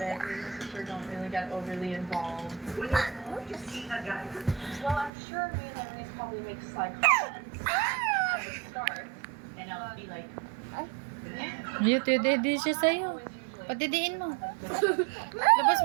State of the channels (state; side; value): drops out; left; at 5.1 s